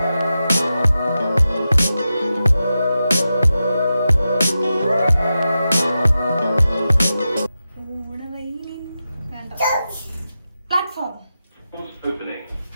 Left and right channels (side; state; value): both; inverted; correlation -0.91